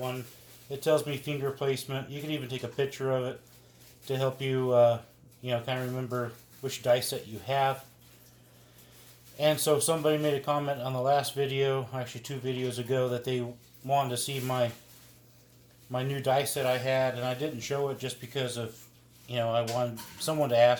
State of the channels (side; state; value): both; identical; correlation 1.00